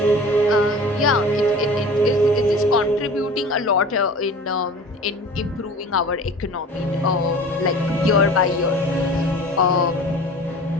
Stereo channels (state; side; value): normal; both; correlation 0.41